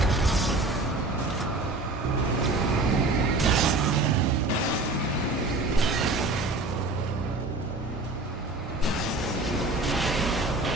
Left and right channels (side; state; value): left; quieter; 3.0 dB